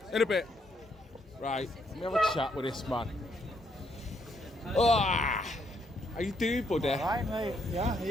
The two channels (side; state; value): both; normal; correlation 0.74